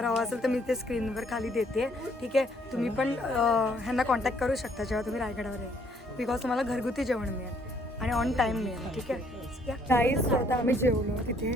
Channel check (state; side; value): normal; both; correlation 0.66